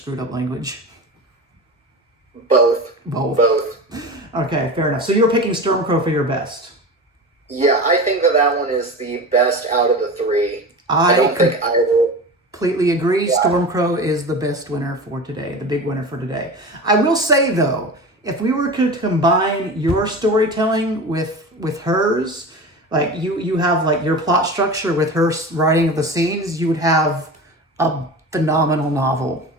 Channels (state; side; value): normal; both; correlation 0.30